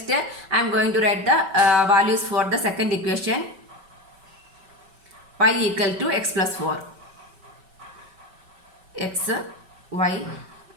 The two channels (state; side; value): late; left; 5.2 ms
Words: I am going to write the values for the second equation. Y equal to x plus 4. X, y,